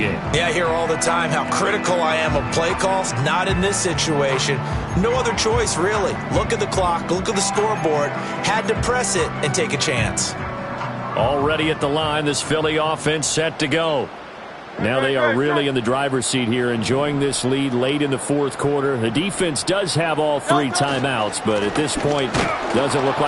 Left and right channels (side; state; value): both; identical; correlation 1.00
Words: Yeah, I hear all the time how critical I am of play calls. Not in this situation. No other choice, really. Look at the clock. Look at the scoreboard. Had to press it and take a chance. Already at the line, this Philly offense set to go. Now they are really in the driver's seat here, enjoying this lead late in the 4th quarter. The defense does have all 3 timeouts, but at this point, doesn't look